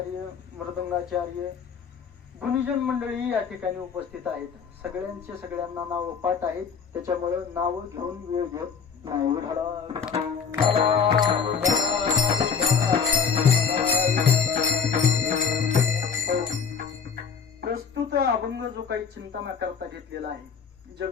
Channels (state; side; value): quieter; right; 6.3 dB